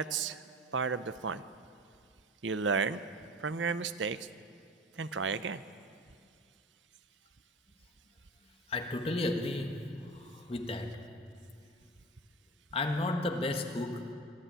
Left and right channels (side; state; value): both; normal; correlation 0.33